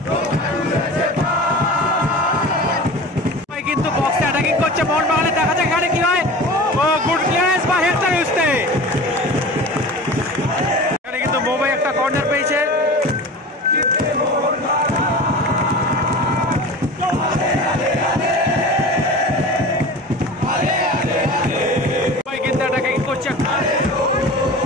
কিন্তু বক্সে অ্যাটাকিং করছে মোহনবাগানে, দেখা যাক এখানে কি হয়। ও গুড ক্লিয়ারেন্স বা হেডটা ইউজতে, এখানে কিন্তু মুম্বাই একটা কর্নার পেয়েছে। কিন্তু অ্যাটাকিং করছে,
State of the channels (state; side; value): normal; both; correlation 0.35